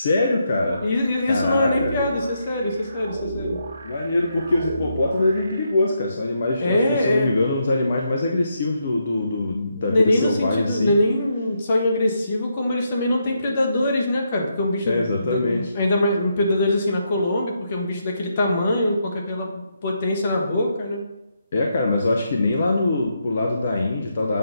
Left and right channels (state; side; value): inverted; both; correlation -0.80